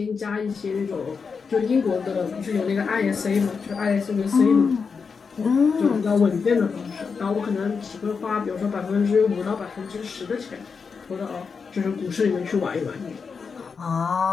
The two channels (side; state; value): right; quieter; 5.4 dB